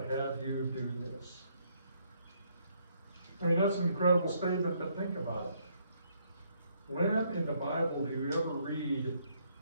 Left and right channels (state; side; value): inverted; both; correlation -0.71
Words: have you do this. I mean, that's an incredible statement, but think about it. When in the Bible do you ever read